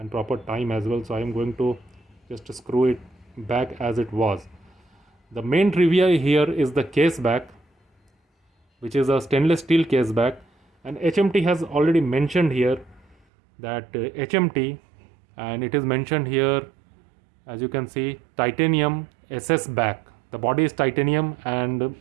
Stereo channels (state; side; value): drops out; left; at 13.2 s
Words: proper time as well. So I'm going to just screw it back as it was. The main trivia here is the case back, which is a stainless steel case back, and HMT has already mentioned here that HMT, and it is mentioned here, as you can see, titanium SS back. The body is titanium and